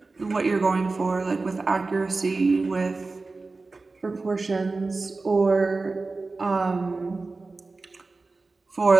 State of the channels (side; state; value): left; quieter; 3.7 dB